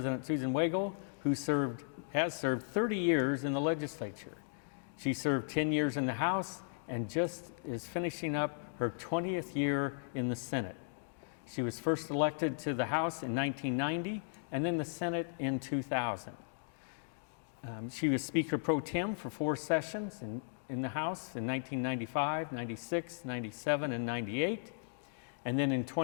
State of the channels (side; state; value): right; silent; digital silence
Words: Susan Wagle, who has served 30 years in the legislature. She served 10 years in the House and just is finishing up her 20th year in the Senate. She was first elected to the House in 1990 and then the Senate in 2000. She was Speaker Pro Tem for 4 sessions in the House in 1995, 96, 97, and 98. And then in